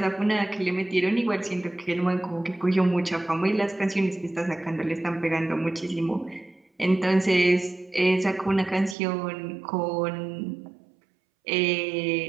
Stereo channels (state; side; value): drops out; left; at 9.0 s